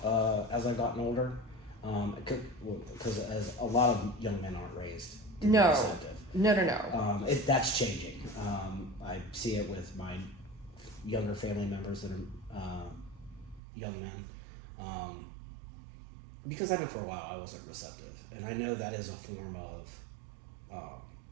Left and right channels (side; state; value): left; drops out; at 13.6 s